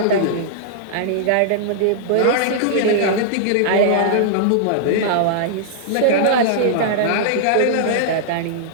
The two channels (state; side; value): different; both; correlation -0.01